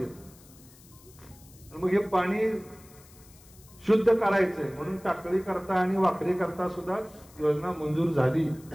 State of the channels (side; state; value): left; noise; hiss, 24 dB below the sound